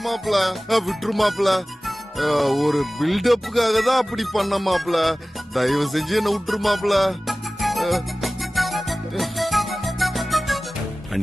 மாப்பிள. விட்டுரு மாப்பிள. ஒரு பில்டப்புக்காக தான் அப்படி பண்ண மாப்பிள. தயவு செஞ்சு என்ன விட்டுரு மாப்பிள.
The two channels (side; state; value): both; normal; correlation 0.97